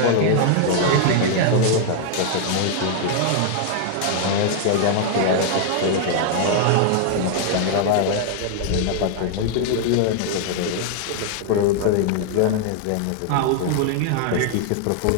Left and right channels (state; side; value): different; both; correlation 0.00